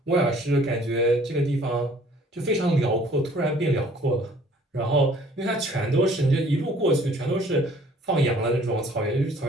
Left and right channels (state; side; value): normal; both; correlation 0.56